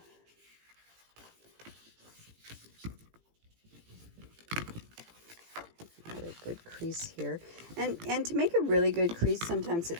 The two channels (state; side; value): late; left; 18 ms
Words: got a good crease here. And to make a really good crease, sometimes